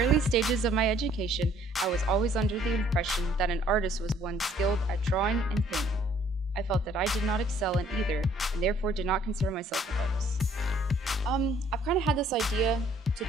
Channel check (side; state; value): both; normal; correlation 0.61